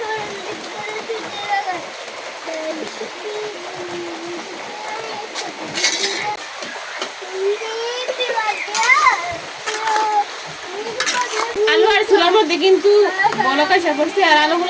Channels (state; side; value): identical; both; correlation 1.00